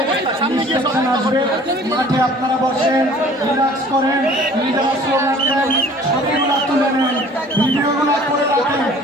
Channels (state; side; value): normal; both; correlation 0.50